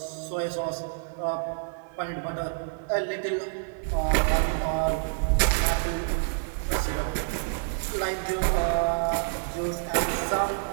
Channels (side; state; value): left; silent; digital silence